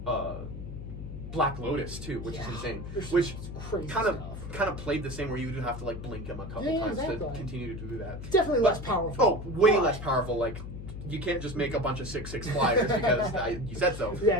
Black Lotus too, which is insane. Which kind of played the same, where you would have to like blink him a couple times to continue to do that. Definitely less powerful. Oh, way less powerful. Like you can't just make a bunch of 6/6 flyers because you said so. Yeah,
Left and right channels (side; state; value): left; noise; hum, 9 dB below the sound